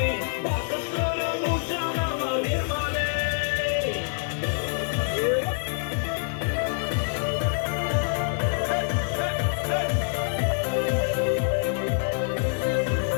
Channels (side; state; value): right; silent; 61 dB below the other